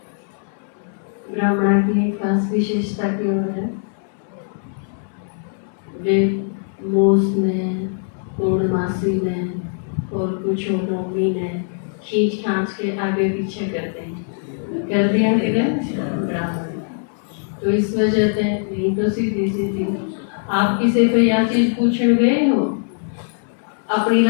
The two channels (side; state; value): right; silent; 65 dB below the other